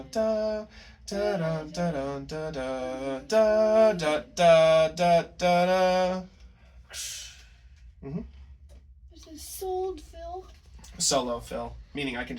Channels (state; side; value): identical; both; correlation 1.00